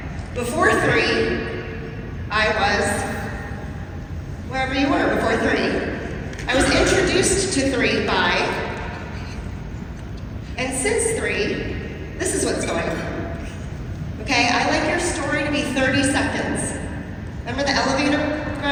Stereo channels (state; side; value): identical; both; correlation 1.00